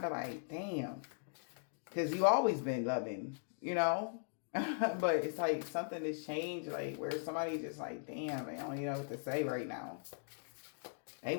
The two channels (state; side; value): silent; right; digital silence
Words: of like, damn. Because you always been loving, you know? But it's like something that's changed, like where somebody just like, damn, they don't even know what to say right now. They